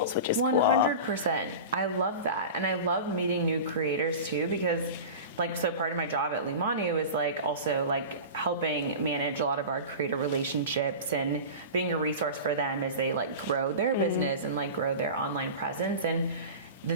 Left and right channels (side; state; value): both; inverted; correlation -0.32